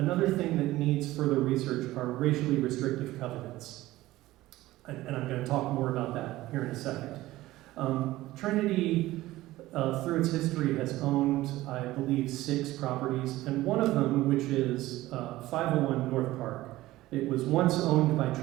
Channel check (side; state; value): left; quieter; 16.9 dB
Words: thing that needs further research are racially restrictive covenants. And I'm going to talk more about that here in a second. Trinity, through its history, has owned, I believe, 6 properties, and one of them, which is 501 North Park. It was once owned by